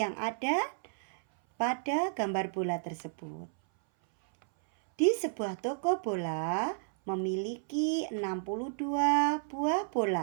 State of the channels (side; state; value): left; silent; 57 dB below the other